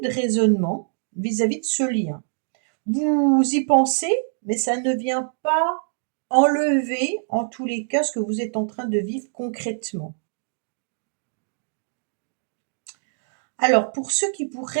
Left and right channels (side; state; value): left; silent; digital silence